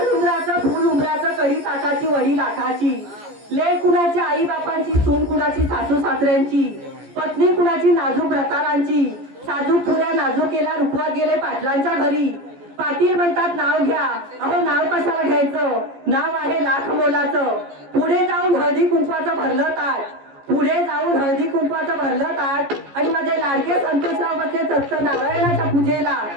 उंबराचं फुल उंबराचं कडी ताकाची वडी लाखाची. लेक कुणाची आई बापांची, सून कुणाची सासू सासऱ्यांची, पत्नी कुणाची नाजूक व्रतारांची. साजूक पुऱ्या नाजूक केल्या रुखवात गेले पाटलांच्या घरी. पाटील म्हणतात नाव घ्या. अहो नाव कशाला घ्यायचं? नाव आहे लाख मोलाचं. पुढे जाऊन हळदी कुंकवाचं भरलं ताट. पुढे जाऊन हळदी कुंकवाचं भरलं ताट. आणि माझे लाडके संतोषराव बसले सत्त नारायणाच्या पूजेला.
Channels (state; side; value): late; left; 14 ms